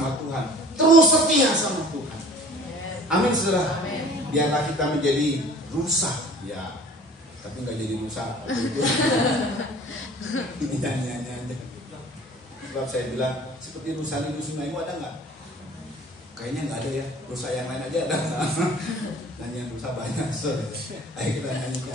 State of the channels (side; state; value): both; normal; correlation 0.47